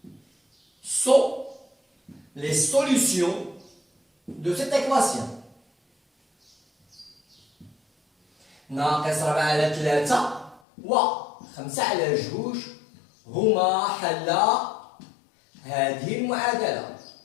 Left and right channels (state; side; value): drops out; right; at 10.6 s